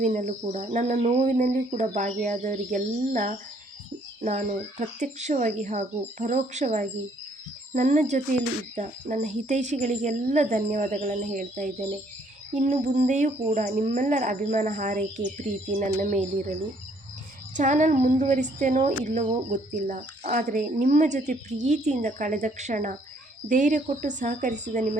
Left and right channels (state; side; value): normal; both; correlation 0.65